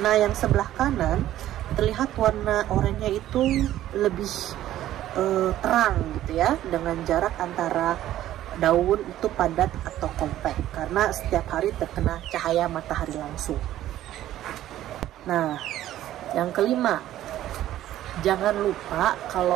Nah, yang sebelah kanan terlihat warna oranye itu lebih terang gitu ya, dengan jarak antara daun itu padat atau kompak karena setiap hari terkena cahaya matahari langsung. Nah, yang kelima, jangan lupa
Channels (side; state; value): left; quieter; 13.2 dB